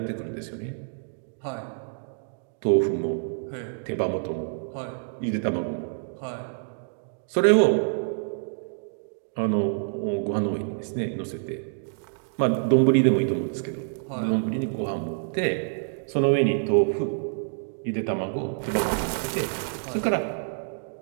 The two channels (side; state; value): left; silent; digital silence